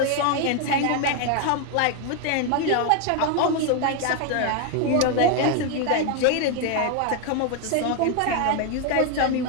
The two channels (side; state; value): both; different; correlation 0.01